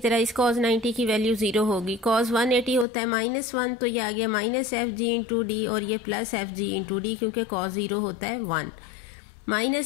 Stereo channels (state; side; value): drops out; right; at 2.9 s